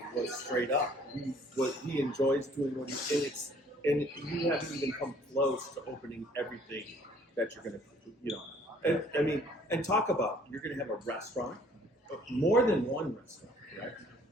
was straight up. He enjoys doing what he is, and you haven't even come close to opening everything that you're going to, and talk about you're going to have a restaurant, more than one restaurant, right?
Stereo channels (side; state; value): both; normal; correlation 0.58